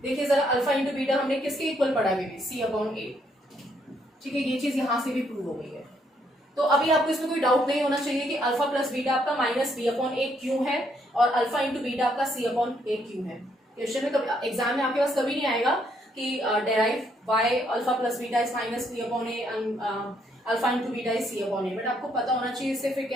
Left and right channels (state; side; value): normal; both; correlation 0.72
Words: देखिए जरा अल्फा इंटू बीटा हमने किसके इक्वल पढ़ा है, सी अपॉन ए, ठीक है, ये चीज यहां से भी प्रूव हो गई है। तो अभी आपको इसमें कोई डाउट नहीं होना चाहिए कि अल्फा प्लस बीटा आपका माइनस बी अपॉन ए क्यों है और अल्फा इंटू बीटा आपका सी अपॉन ए क्यों है। क्वेश्चन में कभी एग्जाम में आपके पास कभी नहीं आएगा कि derive why alpha plus beta is minus b upon a and alpha into beta is c upon a, but आपको पता होना चाहिए, इससे फिर